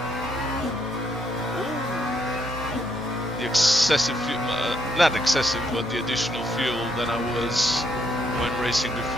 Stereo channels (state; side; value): normal; both; correlation 0.74